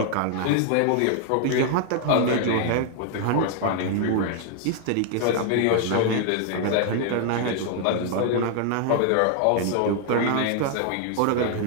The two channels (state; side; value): different; both; correlation 0.00